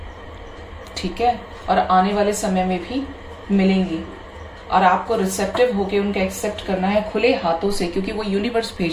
ठीक है, और आने वाले समय में भी मिलेंगी, और आपको रिसेप्टिव होके उनका एक्सेप्ट करना है खुले हाथों से, क्योंकि वो यूनिवर्स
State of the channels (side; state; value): both; identical; correlation 1.00